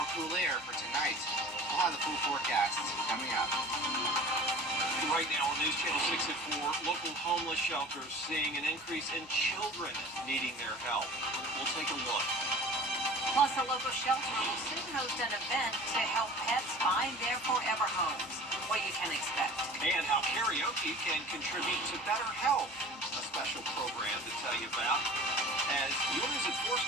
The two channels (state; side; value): normal; both; correlation 0.42